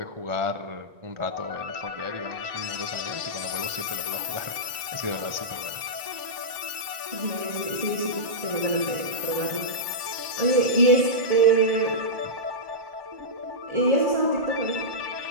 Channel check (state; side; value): late; left; 1.2 ms